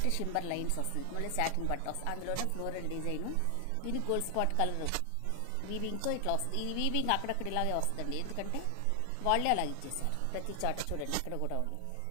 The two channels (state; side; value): different; both; correlation 0.00